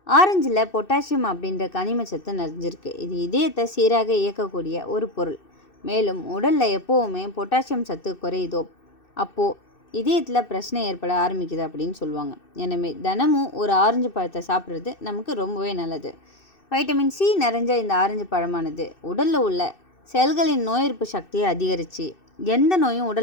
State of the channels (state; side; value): late; right; 2.6 ms